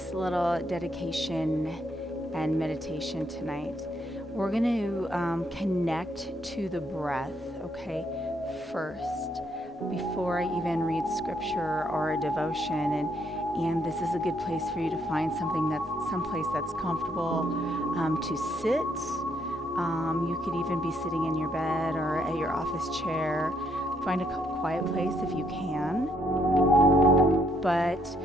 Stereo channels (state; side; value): normal; both; correlation 0.72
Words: little dedication and meditation tonight. We're going to connect to the breath, okay, first, before I even read scripture or a devotion. And this is a good place for you to find someplace that's comfortable to sit. You could even be sitting in your bed or at your office chair. Find a quiet place if you can. But